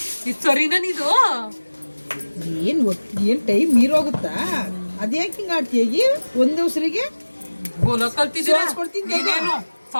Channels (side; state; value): both; inverted; correlation -1.00